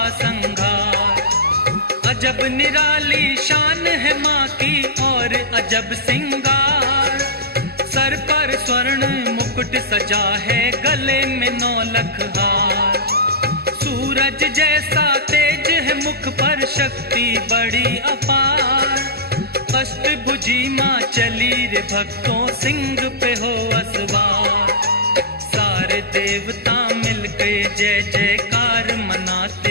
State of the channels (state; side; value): late; left; 0.46 ms